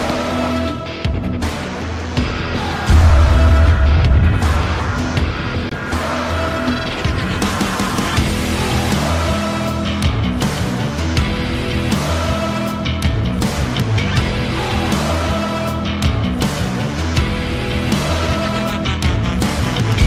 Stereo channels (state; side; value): identical; both; correlation 1.00